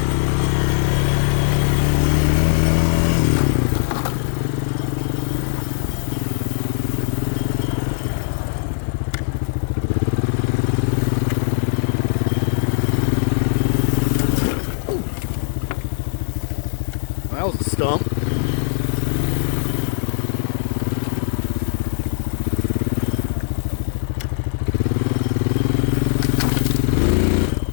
That was a stump.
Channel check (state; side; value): silent; right; 55 dB below the other